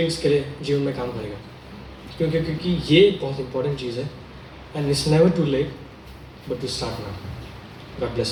के लिए जीवन में काम करेगा। क्योंकि ये बहुत इंपॉर्टेंट चीज़ है। And it's never too late but to start now. God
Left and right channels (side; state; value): both; identical; correlation 1.00